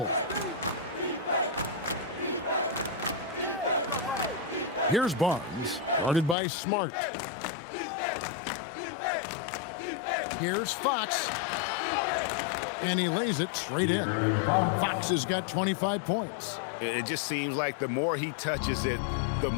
Here's Barnes, guarded by Smart. Here's Fox. And he lays it straight in. Fox has got 25 points. It just seems like the more he touches it, the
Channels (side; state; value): right; drops out; at 6.4 s